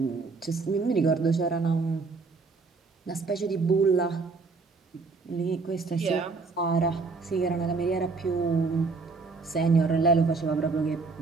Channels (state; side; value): quieter; left; 4.2 dB